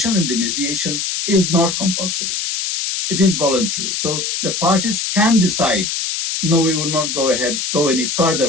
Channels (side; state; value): left; noise; hiss, 2 dB below the sound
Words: in the mediation is not compulsory. It is voluntary. So the parties can decide, no, we will not go any